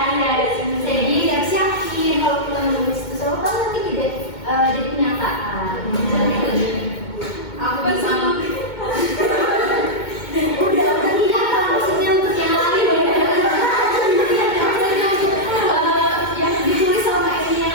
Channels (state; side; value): late; right; 2.2 ms